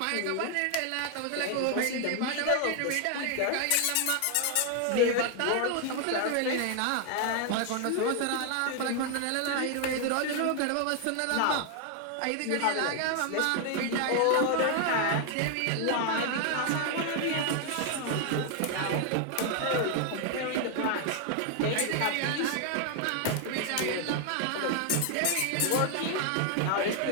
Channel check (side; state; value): both; different; correlation 0.00